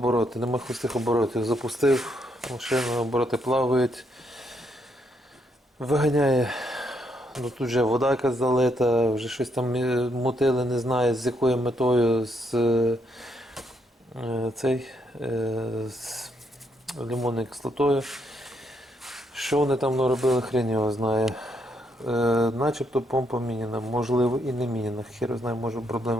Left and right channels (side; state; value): both; normal; correlation 0.75